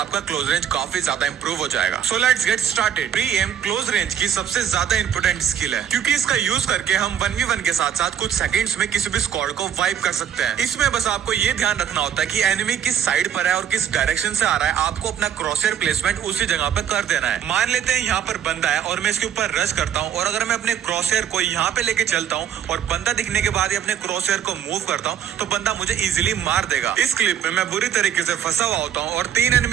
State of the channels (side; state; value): left; quieter; 9.2 dB